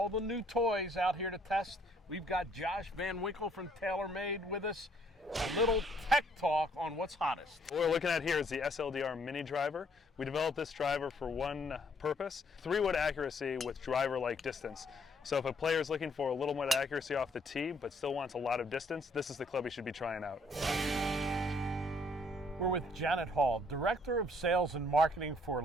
the new toys out here to test. We've got Josh Van Winkle from TaylorMade with us. A little tech talk on what's hottest. What we're looking at here is the SLDR mini driver. We developed this driver for one purpose, 3-wood accuracy with driver-like distance. So if a player is looking for a little more accuracy off the tee but still wants a lot of distance, this is the club you should be trying out. We're with Janet Hall, Director of Sales and Marketing for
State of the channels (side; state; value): both; normal; correlation 0.65